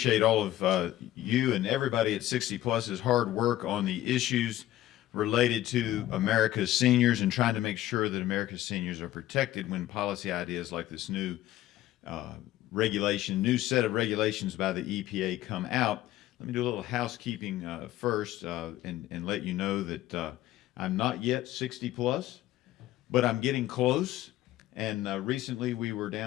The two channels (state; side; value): quieter; right; 14.3 dB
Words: all of you and everybody at 60 Plus's hard work on the issues related to America's seniors and trying to make sure that America's seniors are protected when policy ideas like this new new set of regulations by the EPA come out. Let me do a little housekeeping first and let you know that I'm not yet 60 plus, but I'm getting close. And recently we were